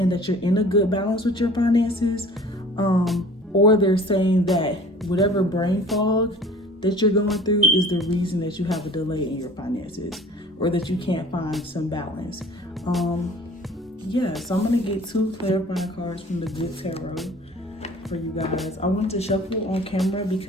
that you're in a good balance with your finances, or they're saying that whatever brain fog that you're going through is the reason that you have a delay in your finances, or that you can't find some balance. Yeah, so I'm gonna get 2 clarifying cards from the Good Tarot for you guys. I want to shuffle on camera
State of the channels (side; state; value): both; normal; correlation 0.47